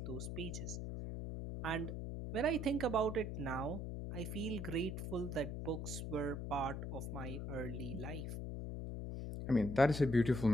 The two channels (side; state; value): left; noise; hum, 4 dB below the sound